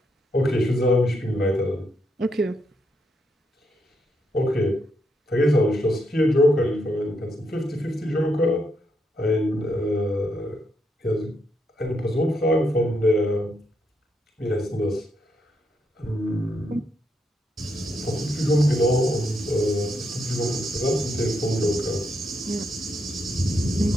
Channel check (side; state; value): both; normal; correlation 0.79